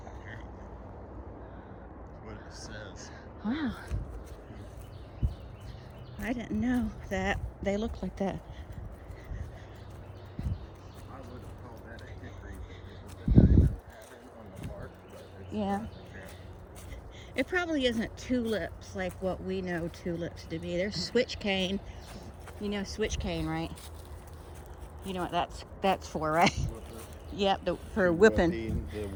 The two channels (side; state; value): both; identical; correlation 1.00